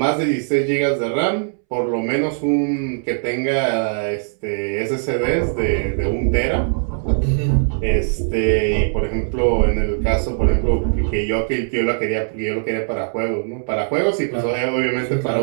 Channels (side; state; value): left; silent; 66 dB below the other